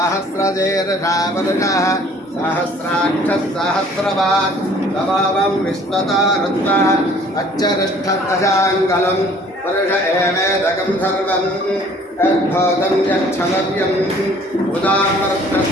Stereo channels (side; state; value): both; normal; correlation 0.54